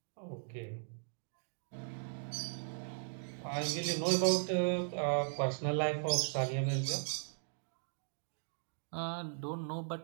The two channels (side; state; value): left; silent; digital silence